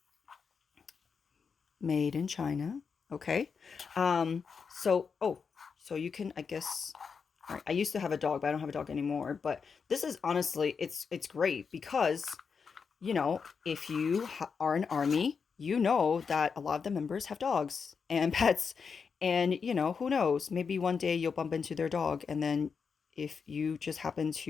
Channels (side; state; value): right; quieter; 5.8 dB